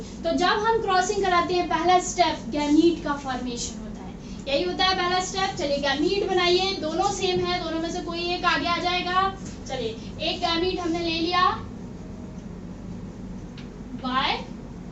तो जब हम क्रॉसिंग कराते हैं पहला स्टेप गैमीट का फॉर्मेशन होता है, यही होता है पहला स्टेप। चलिए गैमीट बनाइए, दोनों सेम है, दोनों में से कोई एक आगे आ जाएगा। चलिए, एक गैमीट हमने ले लिया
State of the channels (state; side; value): identical; both; correlation 1.00